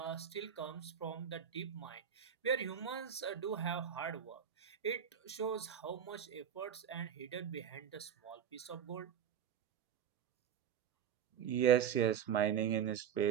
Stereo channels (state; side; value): quieter; left; 8.4 dB